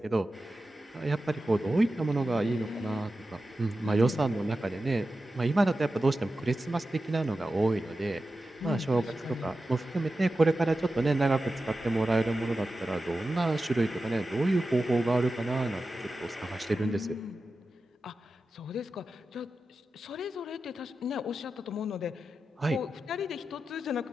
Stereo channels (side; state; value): both; normal; correlation 0.92